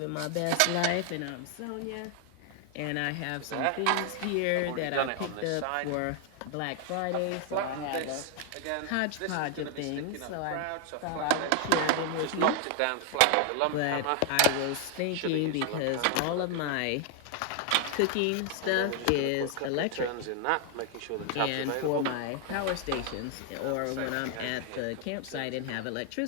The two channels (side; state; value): both; different; correlation 0.00